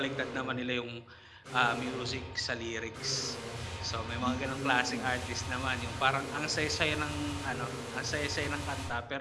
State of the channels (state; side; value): identical; both; correlation 1.00